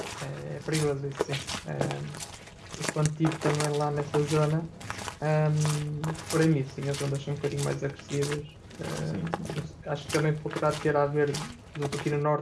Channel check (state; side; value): identical; both; correlation 1.00